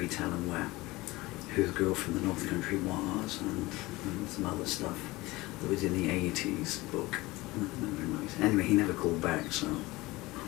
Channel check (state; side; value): quieter; right; 20.5 dB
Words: tell him who the girl from the North Country was, and some other stuff that was in the 80s book. Very nice. Anyway, he never called back, so